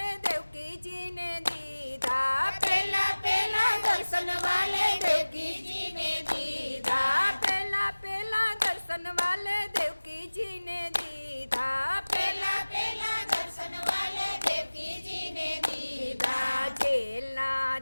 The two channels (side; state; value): both; inverted; correlation -1.00